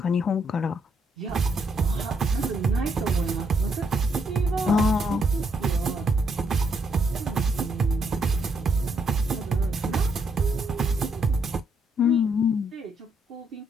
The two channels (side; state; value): both; normal; correlation 0.74